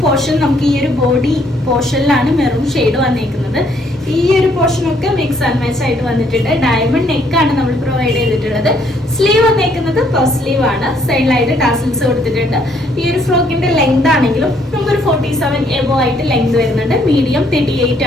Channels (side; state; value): both; normal; correlation 0.67